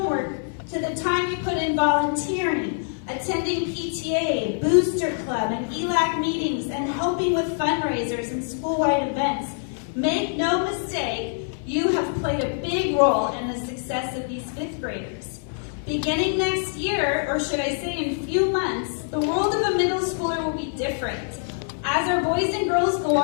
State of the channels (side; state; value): right; silent; 59 dB below the other